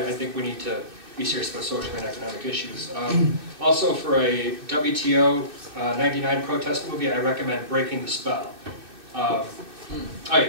think we need to be serious about social and economic issues. Also, for a WTO 99 protest movie, I recommend Breaking the Spell. All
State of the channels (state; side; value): late; left; 2.6 ms